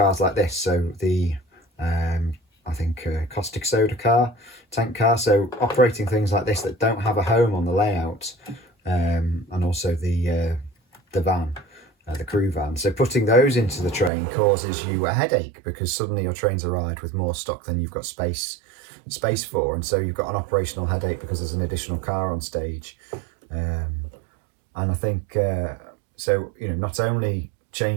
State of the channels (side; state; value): left; drops out; at 14.1 s